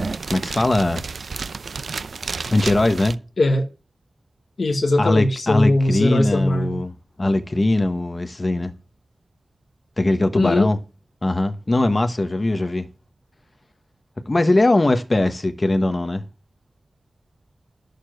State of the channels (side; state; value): both; normal; correlation 0.98